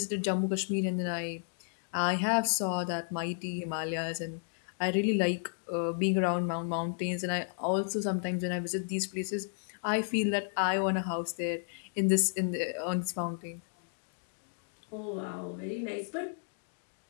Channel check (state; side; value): silent; right; digital silence